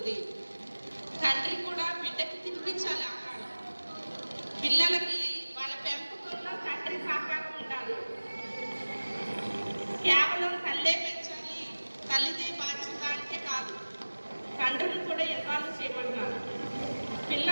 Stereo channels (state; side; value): inverted; both; correlation -1.00